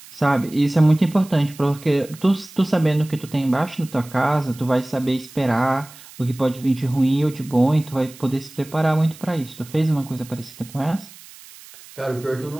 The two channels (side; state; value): right; noise; hiss, 20 dB below the sound